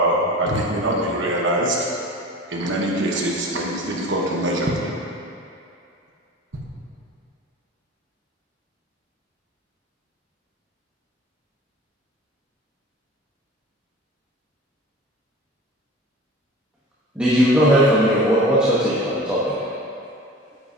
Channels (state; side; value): normal; both; correlation 0.38